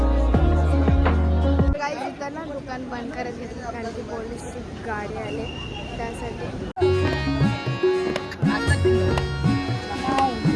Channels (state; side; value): identical; both; correlation 1.00